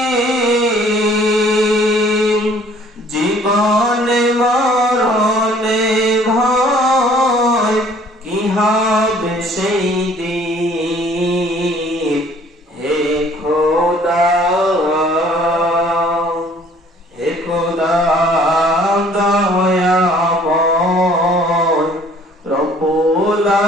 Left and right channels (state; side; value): normal; both; correlation 0.56